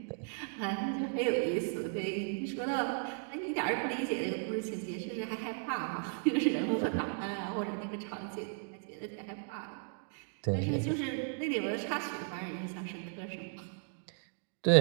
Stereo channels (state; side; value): silent; left; 54 dB below the other